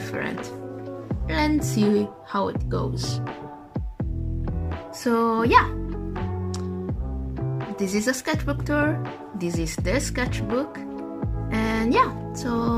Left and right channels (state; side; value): identical; both; correlation 1.00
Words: Let's see how it goes. So yeah, this is a sketchbook tour. This is the sketchbook, and yeah, so